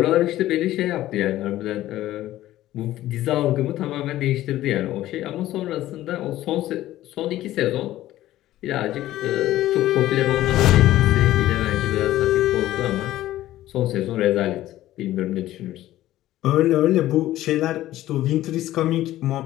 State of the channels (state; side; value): quieter; right; 14.6 dB